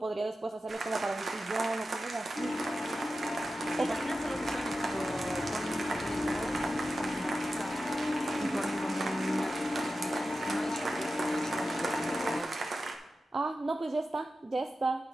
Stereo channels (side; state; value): both; normal; correlation 0.92